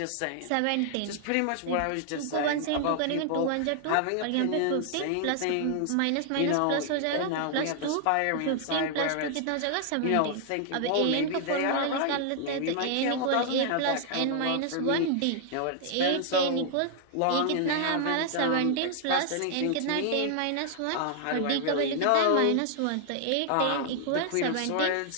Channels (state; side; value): different; both; correlation 0.00